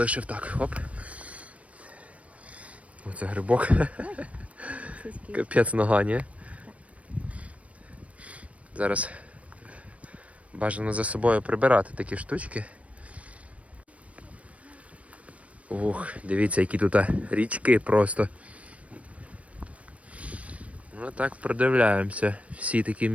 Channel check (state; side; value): late; left; 0.065 ms